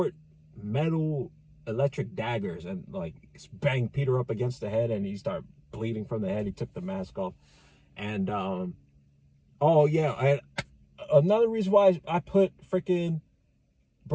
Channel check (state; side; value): identical; both; correlation 1.00